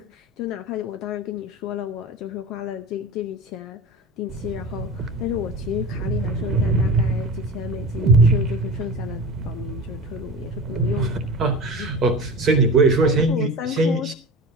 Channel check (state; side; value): normal; both; correlation 0.31